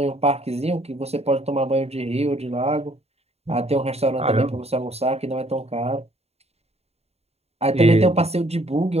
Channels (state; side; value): late; left; 0.30 ms